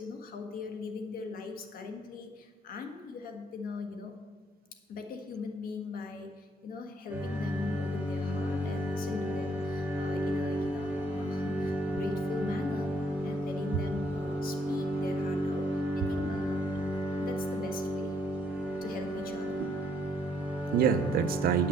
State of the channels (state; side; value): normal; both; correlation 0.68